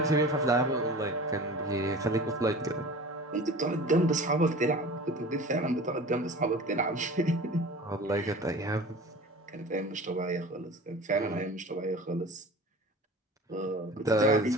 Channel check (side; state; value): both; normal; correlation 0.39